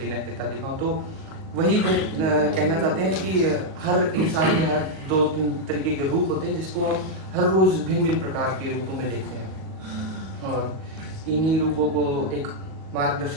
नैतिकता दिखाऊं। तो वही वो कहना चाहते हैं कि हर इंसान के हर दो तीन तरीके के रूप होते हैं जिसको हम हर रोज भिन्न भिन्न प्रकार के रूपों में देखते हैं, और इन्हीं रूपों को एक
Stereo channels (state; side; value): late; left; 37 ms